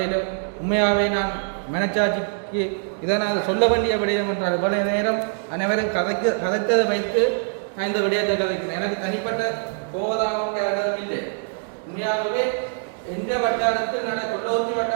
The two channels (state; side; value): silent; left; 63 dB below the other